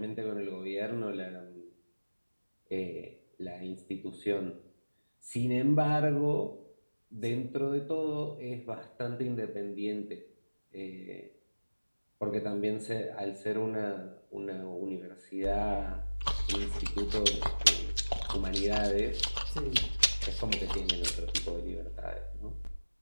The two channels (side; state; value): both; inverted; correlation -1.00